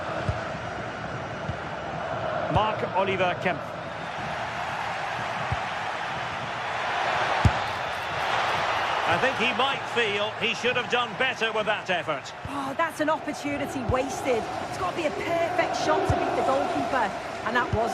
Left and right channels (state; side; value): identical; both; correlation 1.00